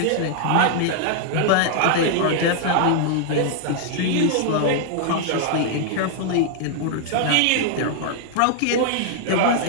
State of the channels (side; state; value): both; different; correlation 0.00